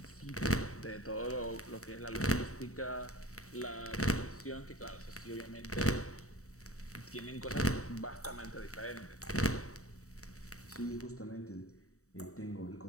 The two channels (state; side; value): late; right; 0.65 ms